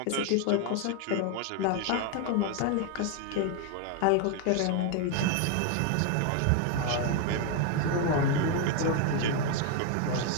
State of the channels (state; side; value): different; both; correlation 0.01